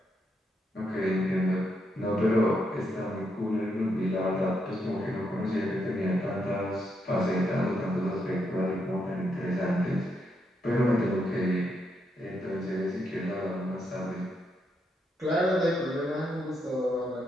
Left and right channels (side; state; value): both; normal; correlation 0.79